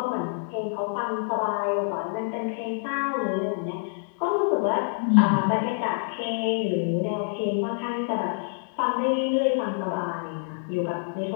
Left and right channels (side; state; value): right; silent; digital silence